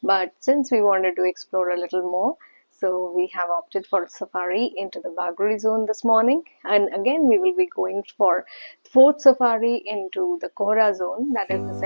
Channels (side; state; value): both; inverted; correlation -1.00